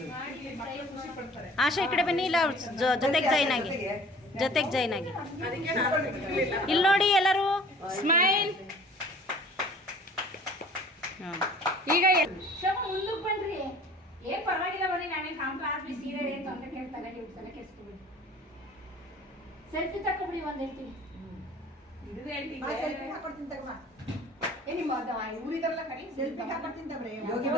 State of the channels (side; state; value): both; normal; correlation 0.48